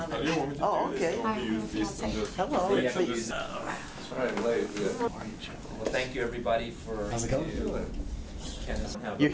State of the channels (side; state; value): both; identical; correlation 1.00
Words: Oh, okay. Hello. Please. Sorry I'm late. Well, thank you everybody for... How's it going? Kenneth. You're